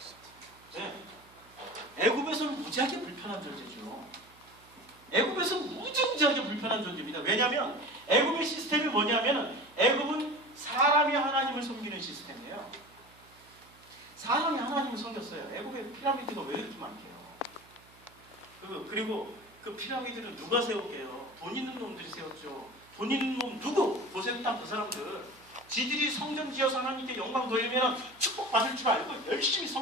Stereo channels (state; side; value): noise; right; hum, 26 dB below the sound